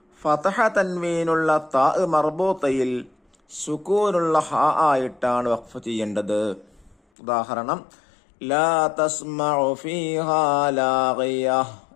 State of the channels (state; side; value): drops out; right; at 7.0 s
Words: ഫതഹ തൻവീനുള്ള ത മർബൂത്തയിൽ സുകൂനുള്ള ഹ ആയിട്ടാണ് വഖഫ് ചെയ്യേണ്ടത്. ഉദാഹരണം ലാ തസ്മഉ ഫീഹാ ലാഗിയ,